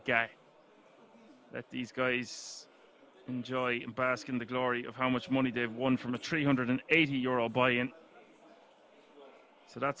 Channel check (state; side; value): identical; both; correlation 1.00